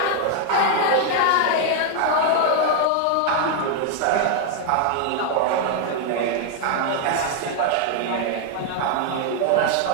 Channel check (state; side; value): different; both; correlation 0.00